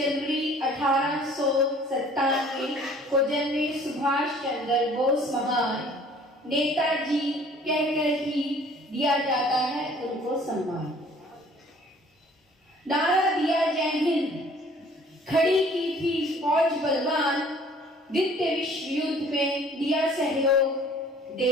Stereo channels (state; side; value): normal; both; correlation 0.53